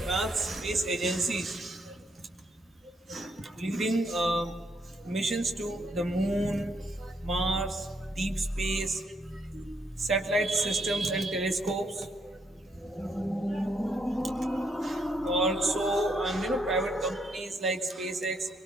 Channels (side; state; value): both; normal; correlation 0.74